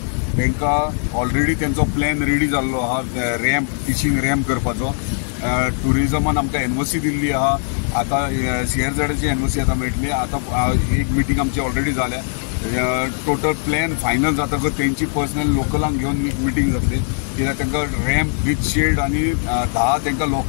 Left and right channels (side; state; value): right; silent; digital silence